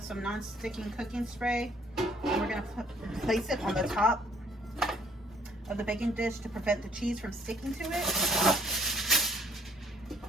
some non-sticking cooking spray, and we're going to place it on the top of the baking dish to prevent the cheese from sticking to it,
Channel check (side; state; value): both; normal; correlation 0.62